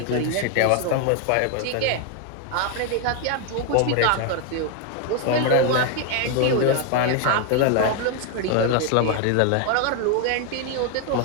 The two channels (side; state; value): both; different; correlation 0.01